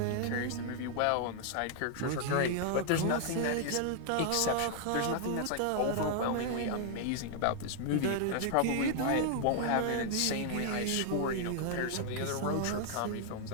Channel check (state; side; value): different; both; correlation 0.00